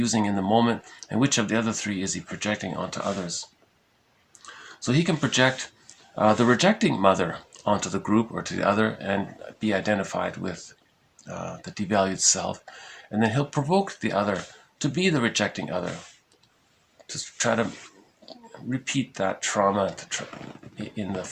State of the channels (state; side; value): identical; both; correlation 1.00